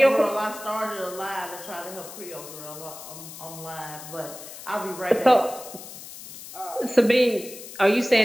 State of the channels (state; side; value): noise; left; hiss, 14 dB below the sound